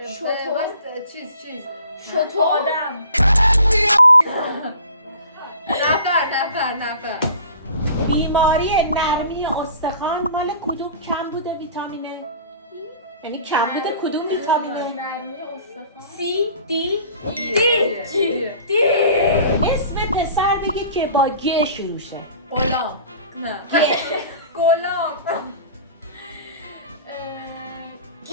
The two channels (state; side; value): inverted; both; correlation -0.45